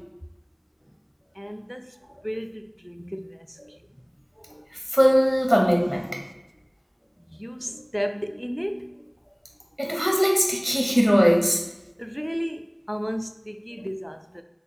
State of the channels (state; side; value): identical; both; correlation 1.00